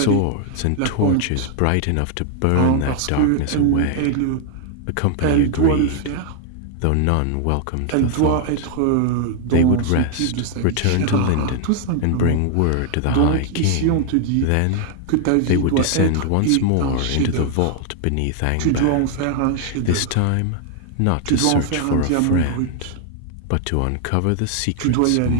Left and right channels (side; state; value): both; different; correlation 0.00